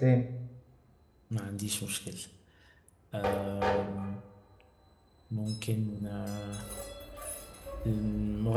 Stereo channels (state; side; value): identical; both; correlation 1.00